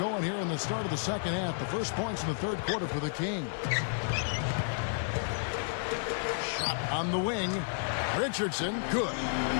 here in the start of the second half. The first points in the third quarter for the Kings. Shot on the wing. Richardson, good.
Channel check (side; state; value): right; silent; 57 dB below the other